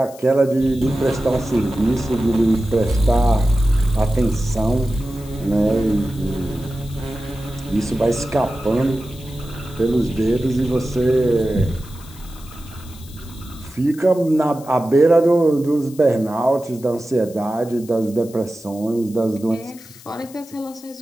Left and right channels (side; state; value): left; noise; hiss, 21 dB below the sound